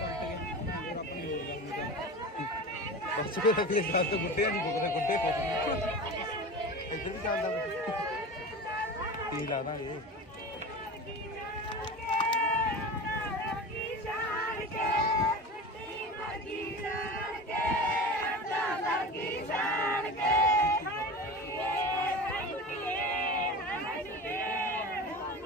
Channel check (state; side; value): normal; both; correlation 0.31